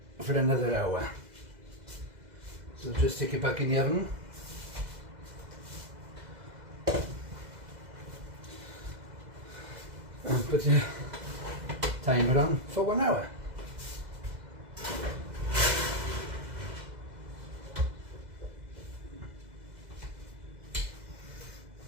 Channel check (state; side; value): late; left; 2.0 ms